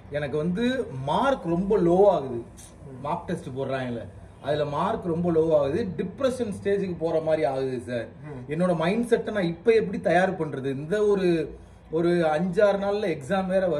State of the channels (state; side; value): identical; both; correlation 1.00